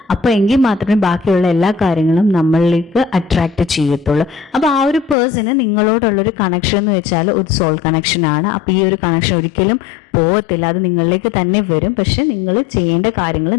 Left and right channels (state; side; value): drops out; right; at 5.2 s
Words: അപ്പോൾ എങ്കിൽ മാത്രമേ ബാക്കിയുള്ള എല്ലാ കാര്യങ്ങളും നമ്മളിലേക്ക് അട്രാക്റ്റ് ചെയ്യത്തുള്ളൂ. അപ്പോൾ ആ ഒരു പേഴ്സണ് നിങ്ങളോടുള്ളൊരു കണക്ഷൻ എന്ന് വെച്ചാൽ ഒരു സോൾ കണക്ഷൻ ആണ്. അപ്പോൾ ഈ ഒരു കണക്ഷൻ ഒരിക്കലും പോകത്തില്ല, അത് നിങ്ങളിലേക്ക് തന്നെ വരും. പക്ഷെ നിങ്ങൾ ചെയ്യേണ്ട കാര്യങ്ങൾ